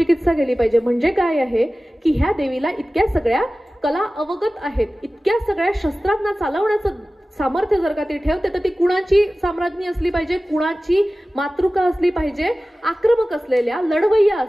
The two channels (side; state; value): both; normal; correlation 0.96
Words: केली पाहिजे. म्हणजे काय आहे की ह्या देवीला इतक्या सगळ्या कला अवगत आहेत, इतक्या सगळ्या शस्त्रांना चालवण्याचं सामर्थ्य जर का ती ठेवते तर ती कुणाची साम्राज्ञी असली पाहिजे, कुणाची मातृका असली पाहिजे, आक्रमक असलेल्या, लढवय्या